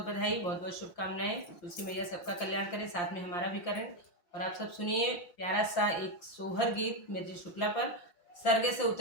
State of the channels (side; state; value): right; late; 5.8 ms